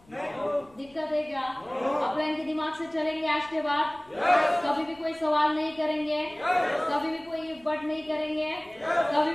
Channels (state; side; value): noise; left; rumble, 28 dB below the sound